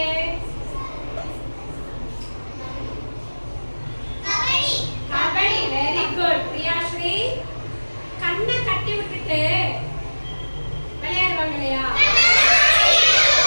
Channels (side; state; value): both; inverted; correlation -1.00